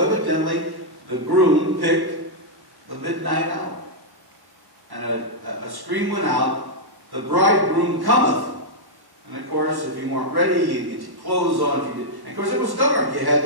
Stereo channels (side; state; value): left; late; 1.1 ms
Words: the groom picked the midnight hour. And a scream went out, "The bridegroom cometh." And of course, if you weren't ready, you get your clothes on. If you did. And of course, it was dark. You had